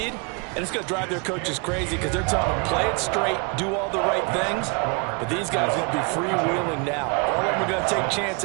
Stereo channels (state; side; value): quieter; left; 34.7 dB